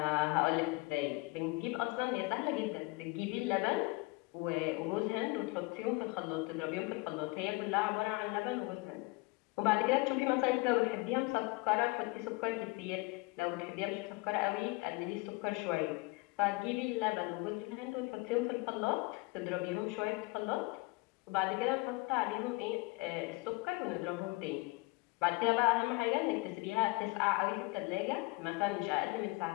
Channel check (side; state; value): right; quieter; 24.7 dB